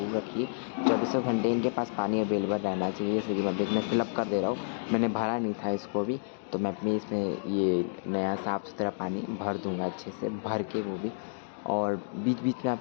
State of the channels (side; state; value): right; silent; digital silence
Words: रखिए। 24 घंटे इनके पास पानी अवेलेबल रहना चाहिए। जैसे कि मैं इसमें फिलअप कर दे रहा हूँ, मैंने भरा नहीं था इसको भी, तो मैं अपने इसमें ये नया साफ़ सुथरा पानी भर दूँगा अच्छे से, भर के वो भी। और बीच बीच में